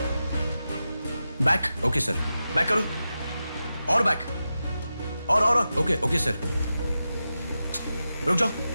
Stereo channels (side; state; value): both; inverted; correlation -0.91